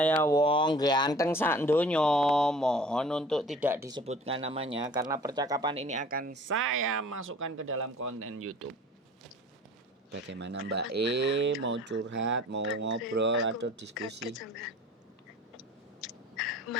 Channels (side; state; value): both; normal; correlation 0.46